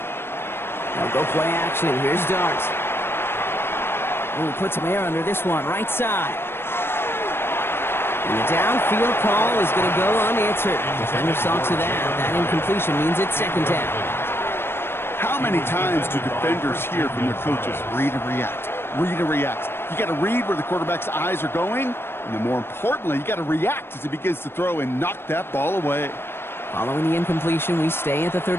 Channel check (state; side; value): late; right; 0.11 ms